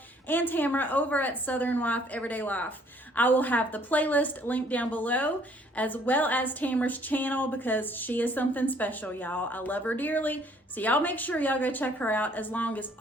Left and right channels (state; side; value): normal; both; correlation 0.61